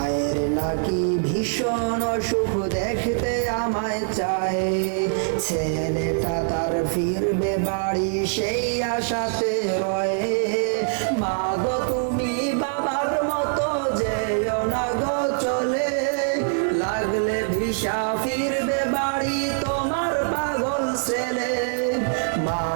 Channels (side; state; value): left; silent; 55 dB below the other